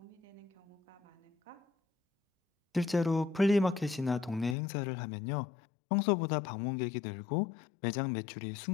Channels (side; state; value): right; drops out; at 4.5 s